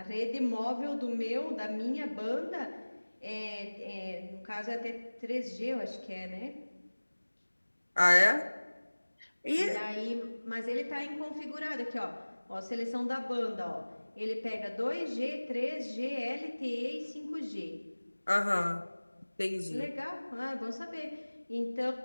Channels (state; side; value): inverted; both; correlation -1.00